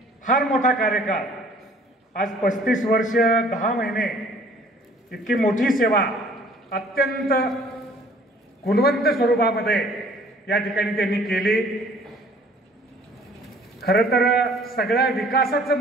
फार मोठा कार्यकाळ, आज 35 वर्ष 10 महिने इतकी मोठी सेवा अत्यंत गुणवंत स्वरूपामध्ये या ठिकाणी त्यांनी केली। खरं तर सगळ्या विकासाचं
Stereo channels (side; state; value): both; normal; correlation 0.55